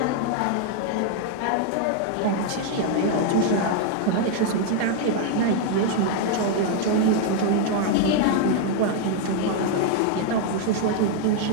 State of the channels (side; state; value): both; different; correlation 0.00